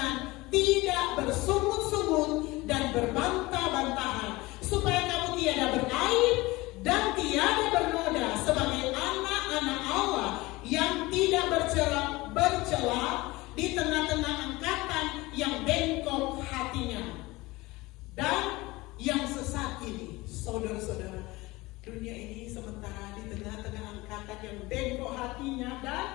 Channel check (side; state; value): right; quieter; 21.2 dB